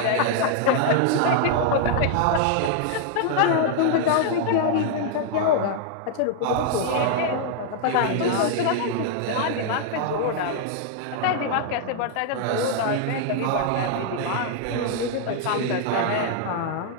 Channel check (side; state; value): both; different; correlation 0.00